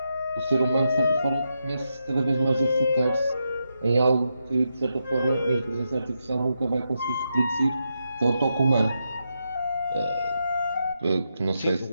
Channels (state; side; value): inverted; both; correlation -0.85